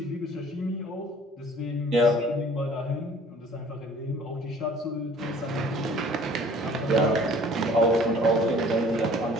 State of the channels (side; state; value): both; normal; correlation 0.53